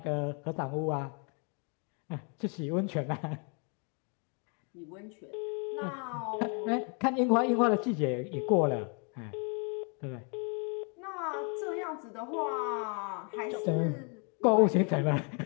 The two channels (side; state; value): right; quieter; 37.8 dB